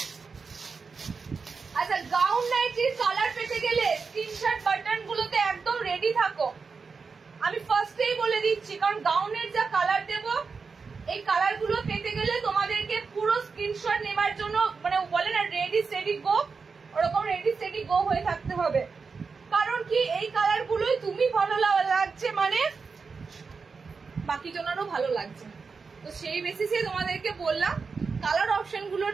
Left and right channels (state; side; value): quieter; left; 5.0 dB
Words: আচ্ছা গাউন নাইটির কালার পেতে গেলে স্ক্রিনশট বাটন গুলোতে একদম রেডি থাকো, আমি ফার্স্টেই বলে দিচ্ছি, কারণ গাউনের যা কালার দেব এই কালার গুলো পেতে গেলে তোমাদেরকে পুরো স্ক্রিনশট নেবার জন্য মানে বলে না রেডি স্টেডি গো, ওরকম রেডি স্টেডি গো হয়ে থাকতে হবে। কারণ কি এই কালার গুলোই তুমি ভালো লাগছে মানে বাকি জনেরও ভালো লাগছে, তো সেই বেসিসে তোমাদেরকে বললাম কালার অপশন